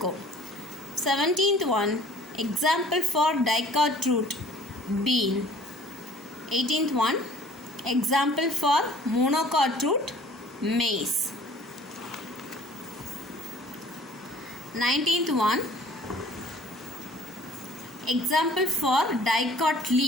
17th one, example for dicot root, bean. 18th one, example for monocot root, maize. 19th one, example for dicot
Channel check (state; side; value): normal; both; correlation 0.51